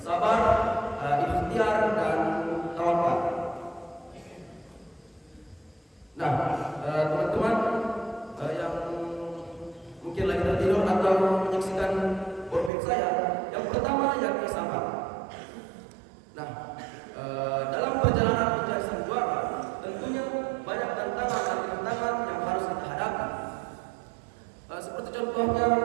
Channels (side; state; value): left; drops out; at 12.7 s